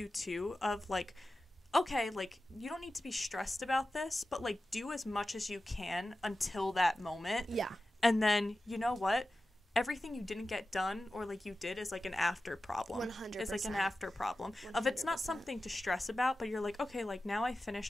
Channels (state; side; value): normal; both; correlation 0.94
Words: to of like, okay, like you don't need to be stressed about this, but like do as much as you can until that moment. Yeah. And then you know what? Everything you didn't get done or like you did is like an after problem. 100%. It's like an after problem. 100%. Of it's not something to stress about, but you're like, okay, like now I